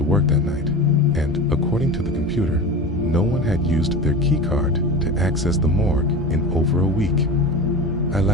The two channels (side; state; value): both; normal; correlation 0.30